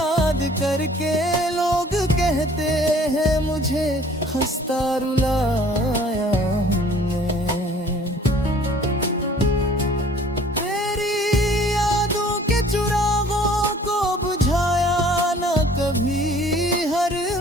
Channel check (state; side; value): normal; both; correlation 0.53